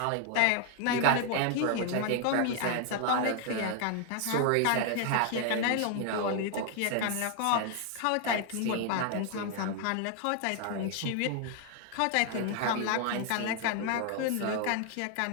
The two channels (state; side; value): different; both; correlation 0.00